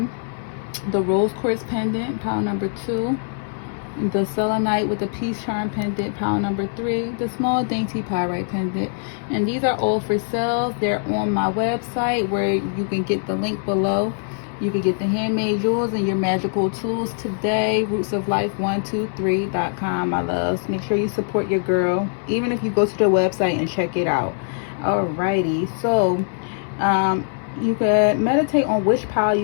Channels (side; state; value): right; silent; 64 dB below the other